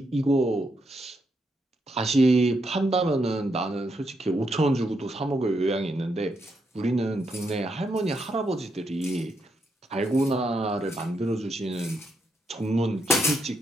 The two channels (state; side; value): normal; both; correlation 0.80